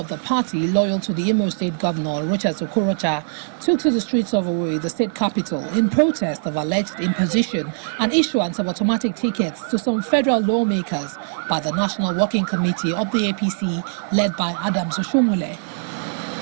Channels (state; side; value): silent; left; digital silence